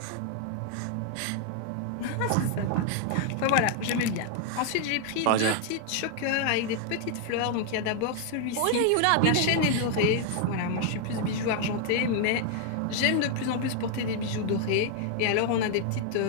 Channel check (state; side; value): different; both; correlation 0.00